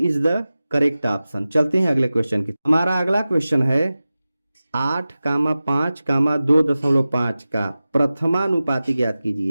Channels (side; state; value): both; inverted; correlation -0.96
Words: the correct option. चलते हैं अगले क्वेश्चन की। हमारा अगला क्वेश्चन है 8,5,2.5 का प्रथमानुपाती ज्ञात